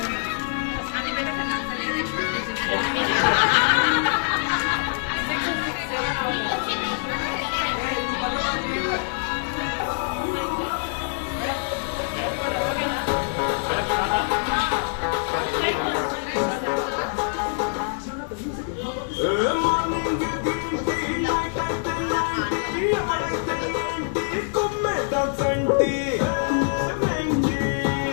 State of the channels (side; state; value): right; silent; 62 dB below the other